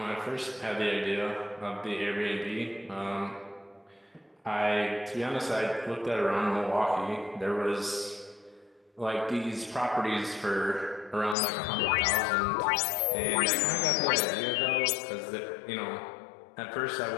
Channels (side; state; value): right; drops out; at 11.4 s